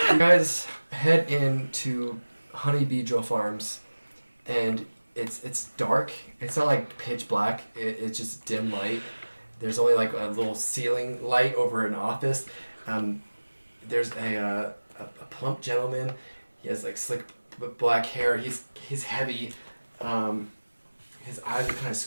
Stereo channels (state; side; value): inverted; both; correlation -1.00